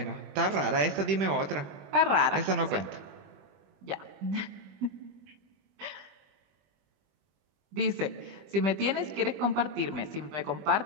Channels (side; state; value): left; late; 21 ms